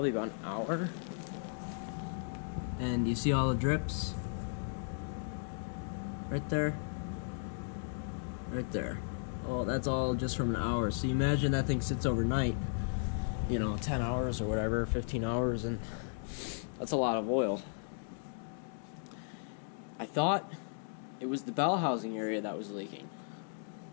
about an hour. And you see all the drips? Right there. Right there. Oh, that's all just from an hour. So you imagine that thing sits overnight, 10 hours or whatever, 15 hours, and that's a lot of oil. I thought it was the bell housing area that was leaking.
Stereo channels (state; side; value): silent; right; digital silence